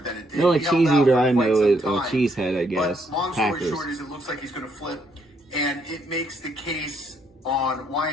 than it did. The only cheese eater I know is Cheesehead, I guess. But long story short is it looks like he's going to flip and it makes the case on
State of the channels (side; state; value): both; normal; correlation 0.72